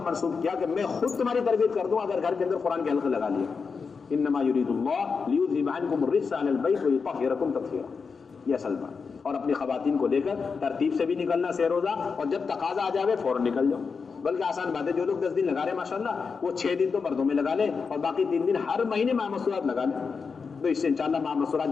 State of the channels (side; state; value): right; quieter; 5.2 dB